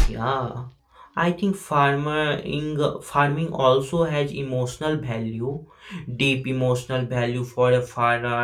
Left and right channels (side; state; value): both; identical; correlation 1.00